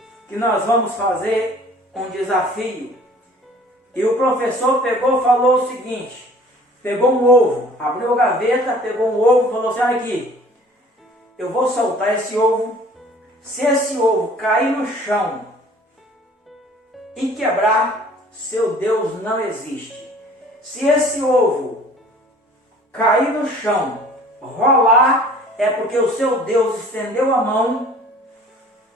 que nós vamos fazer um desafio. E o professor falou o seguinte: pegou um ovo, abriu a gaveta, pegou um ovo e falou assim: olha aqui, eu vou soltar esse ovo. Se esse ovo cair no chão e quebrar, seu Deus não existe. Se esse ovo cair no chão, rolar, é porque o seu Deus estendeu a mão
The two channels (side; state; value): both; normal; correlation 0.50